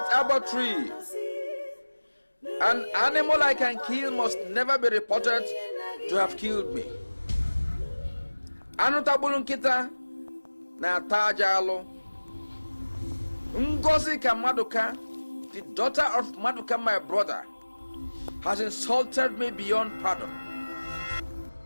arbor tree. An animal I can kill must never be reported to have killed me. Anutabulunkita na tajalo. Ngozi Maduka, the daughter of Maduka, my brother, has insulted me beyond pardon.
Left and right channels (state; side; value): inverted; both; correlation -1.00